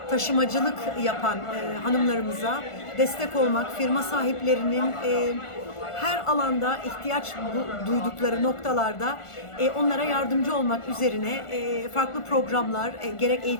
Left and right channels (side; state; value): right; late; 1.4 ms